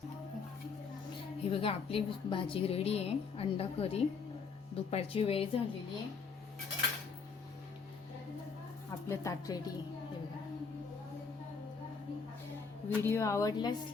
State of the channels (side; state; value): right; quieter; 5.2 dB